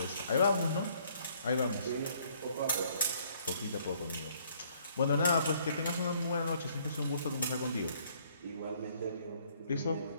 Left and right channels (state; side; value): inverted; both; correlation -0.63